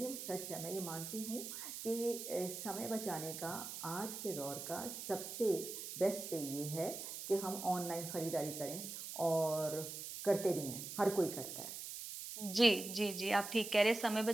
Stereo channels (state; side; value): noise; right; hiss, 7 dB below the sound